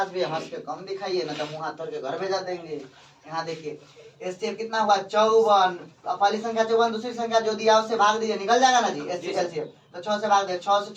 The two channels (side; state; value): both; identical; correlation 1.00